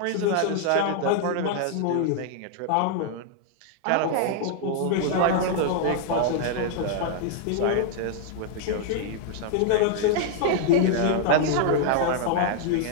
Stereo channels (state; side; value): different; both; correlation 0.00